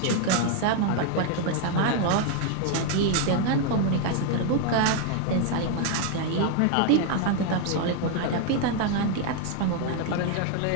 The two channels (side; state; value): both; different; correlation 0.00